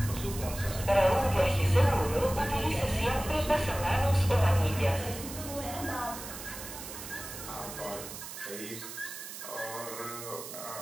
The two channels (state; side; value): noise; right; hiss, 10 dB below the sound